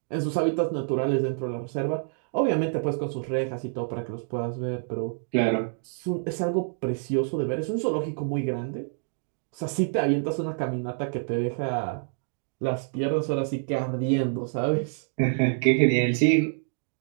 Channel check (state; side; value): silent; left; digital silence